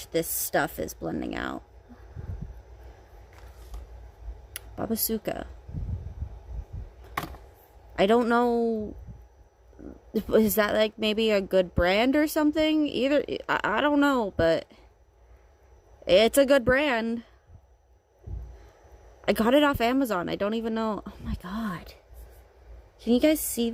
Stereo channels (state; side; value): identical; both; correlation 1.00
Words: this stuff is blending out. Babasuka. I don't know. Is that like maybe a good brand or something? Either, I don't know, but it's a good brand. I got it off Amazon. I don't even know. Oh my god. Can you guys see